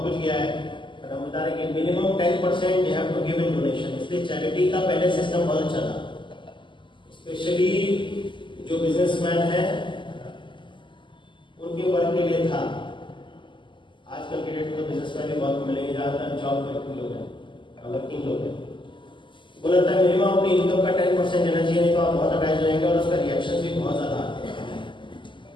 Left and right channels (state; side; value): late; right; 0.24 ms